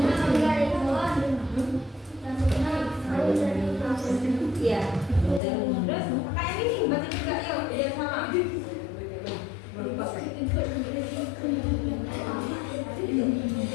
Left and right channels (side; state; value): right; drops out; at 5.4 s